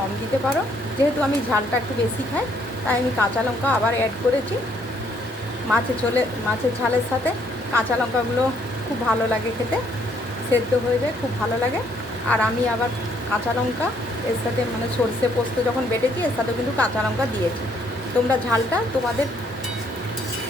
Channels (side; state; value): both; normal; correlation 0.67